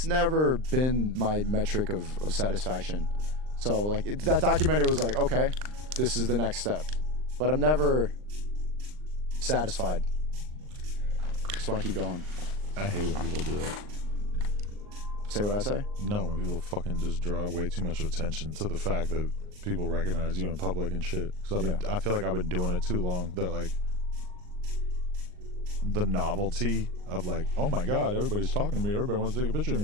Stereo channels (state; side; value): late; left; 39 ms